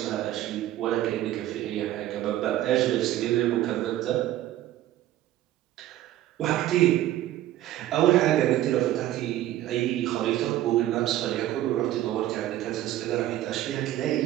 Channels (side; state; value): left; quieter; 13.7 dB